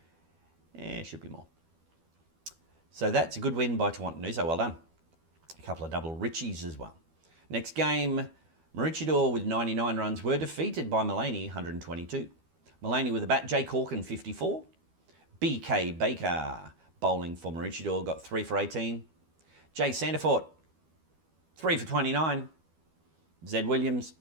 Should be more. So that's a good win by Tawantinoosa, well done. A couple of double Richies as well. Next game, Maroochydore with 99 runs were defeated by Mullaney, 122. Mullaney with the bat, Jay Corkin, 54. BK Baker, bowling for Maroochydore, got 3 for 18. Jay Sandifort, 3 for 29. Zed Williams,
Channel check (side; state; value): left; late; 12 ms